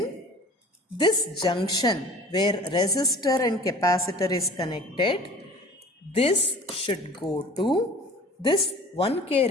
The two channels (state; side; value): normal; both; correlation 0.44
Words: this junction where resistor and capacitor is connected, this should go to this 1K